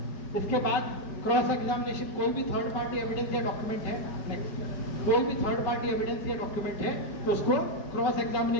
इसके बाद क्रॉस एग्जामिनेशन, कोई भी थर्ड पार्टी एविडेंस या डॉक्यूमेंट है, नेक्स्ट कोई भी थर्ड पार्टी एविडेंस या डॉक्यूमेंट है तो उसको क्रॉस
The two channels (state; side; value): late; right; 5.3 ms